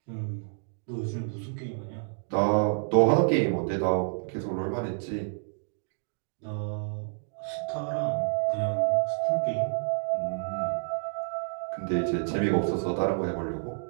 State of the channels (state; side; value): silent; left; digital silence